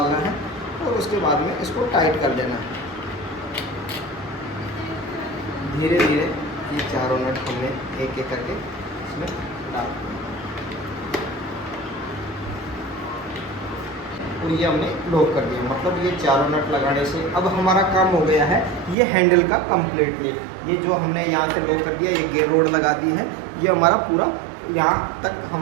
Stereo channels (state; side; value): drops out; left; at 18.9 s